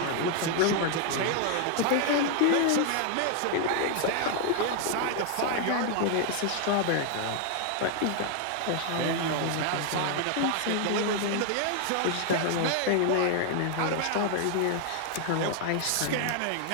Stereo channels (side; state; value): both; different; correlation 0.00